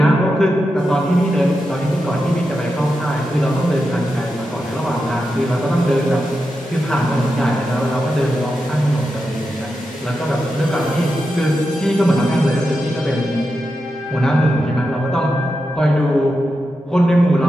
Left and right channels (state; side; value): normal; both; correlation 0.88